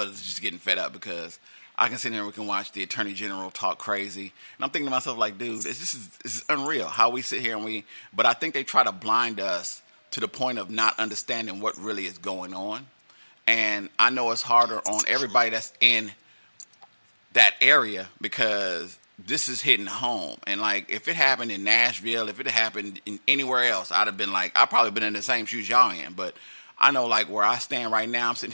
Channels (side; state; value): both; inverted; correlation -1.00